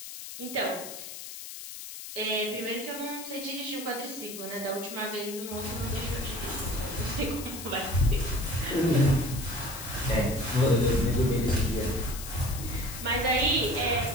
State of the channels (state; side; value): noise; left; hiss, 10 dB below the sound